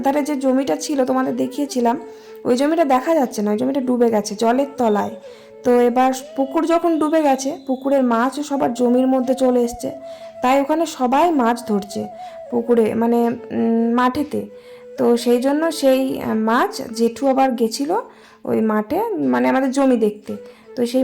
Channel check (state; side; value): identical; both; correlation 1.00